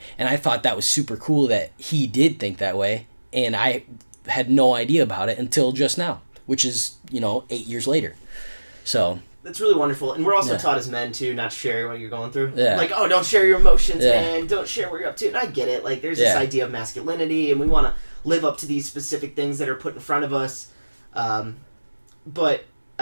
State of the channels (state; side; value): inverted; both; correlation -1.00